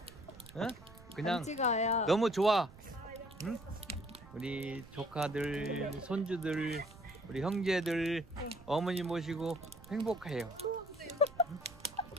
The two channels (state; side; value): noise; right; rumble, 20 dB below the sound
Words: 그냥 찍어요. 너무 좋아. 응? 우리 조카들, 손주들, 우리 형제들, 어머니 모시고 행복해요.